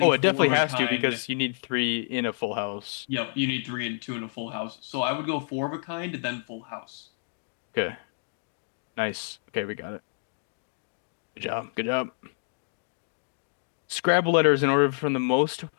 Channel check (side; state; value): right; silent; digital silence